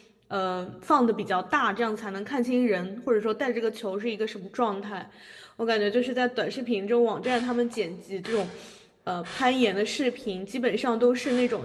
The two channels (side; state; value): both; identical; correlation 1.00